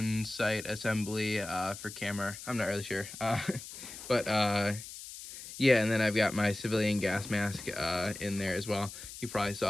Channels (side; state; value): left; noise; hiss, 12 dB below the sound